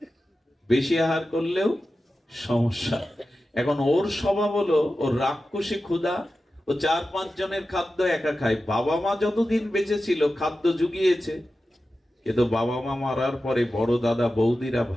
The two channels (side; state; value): both; normal; correlation 0.93